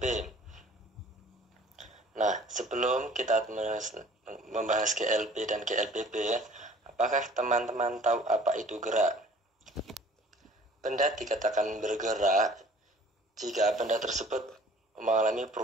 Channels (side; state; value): both; normal; correlation 0.51